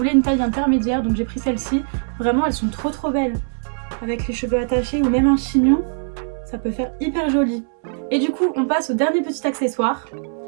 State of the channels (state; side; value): silent; left; 65 dB below the other